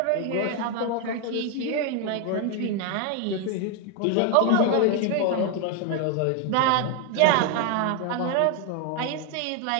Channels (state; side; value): different; both; correlation 0.01